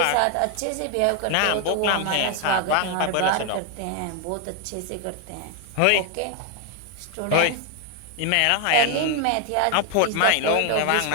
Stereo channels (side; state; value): both; different; correlation 0.01